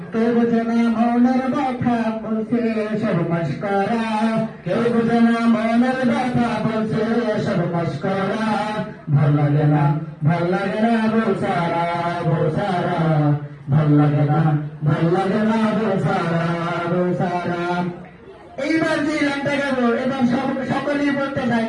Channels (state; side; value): identical; both; correlation 1.00